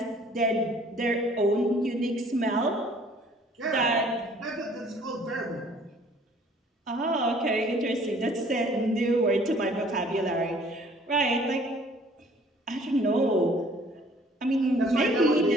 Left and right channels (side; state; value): both; normal; correlation 0.56